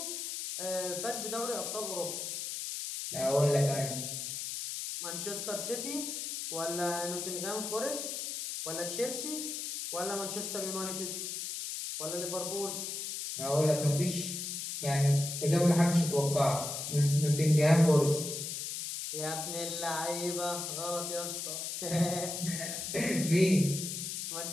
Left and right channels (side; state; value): left; noise; hiss, 5 dB below the sound